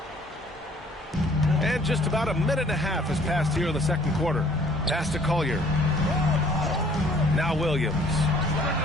And just about a minute and a half has passed here in the second quarter. Pass to Collier. Now Williams.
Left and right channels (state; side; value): normal; both; correlation 0.58